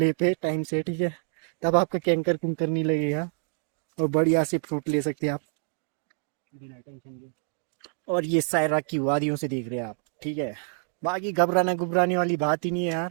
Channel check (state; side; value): silent; left; 59 dB below the other